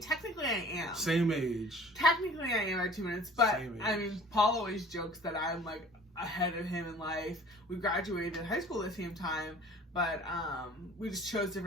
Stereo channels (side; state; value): both; normal; correlation 0.48